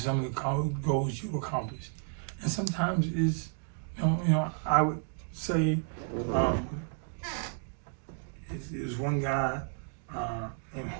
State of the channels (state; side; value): silent; left; 56 dB below the other